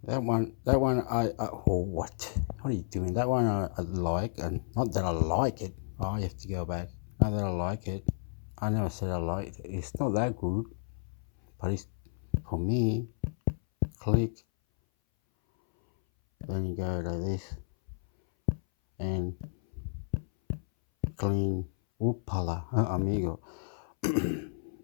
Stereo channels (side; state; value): right; silent; 57 dB below the other